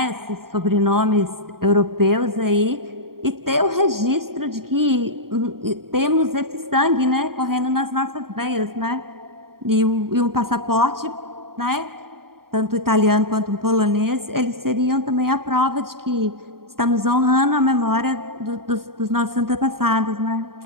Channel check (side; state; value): left; late; 0.93 ms